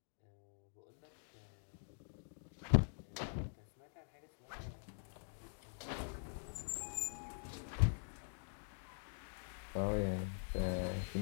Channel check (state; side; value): silent; right; digital silence